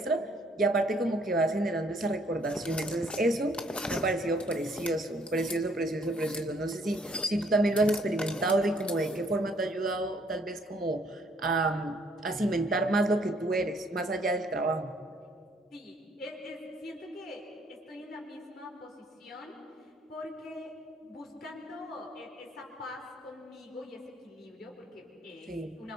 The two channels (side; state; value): both; normal; correlation 0.65